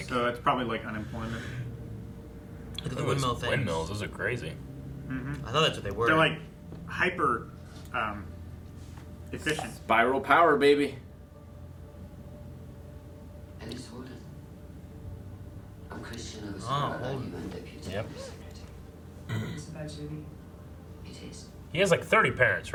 So it's probably like unemployment. Look at the those windmill things. Windmills, those are crazy. I thought that's what they were. They're like hyper efficient. Spiral power, baby. Alice Holden. I'm Christian of Holden. and deputy Yep. secretary. It's about Judy. It is. He has like 30 parents,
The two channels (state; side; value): identical; both; correlation 1.00